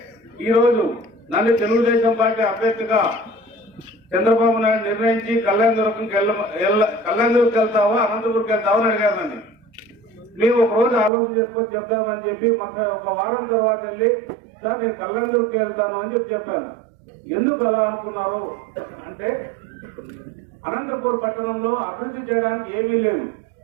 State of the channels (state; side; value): drops out; left; at 11.1 s